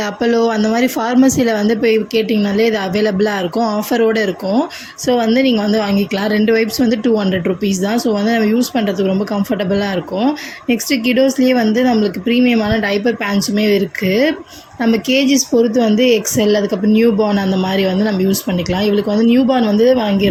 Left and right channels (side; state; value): both; identical; correlation 1.00